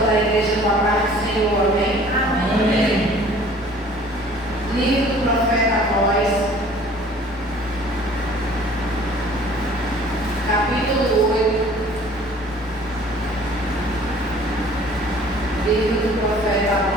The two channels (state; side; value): normal; both; correlation 0.51